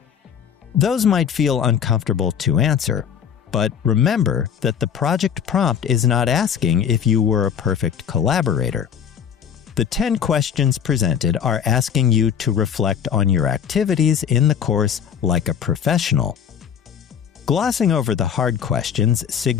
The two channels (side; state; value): right; quieter; 8.0 dB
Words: Those might feel uncomfortable to answer, but remember that the project prompt is not asking if you were a perfect collaborator. The 10 questions presented are asking you to reflect on your activities in the course like a professional. Glossing over the hard questions